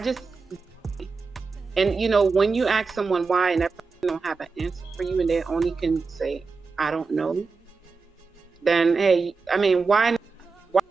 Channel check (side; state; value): left; quieter; 4.5 dB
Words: and when you ask someone why and that person don't have an answer for you and they only can say, I don't know, then, hey, I mean, why